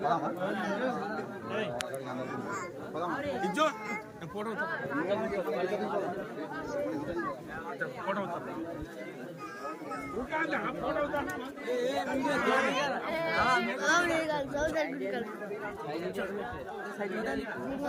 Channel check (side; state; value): both; identical; correlation 1.00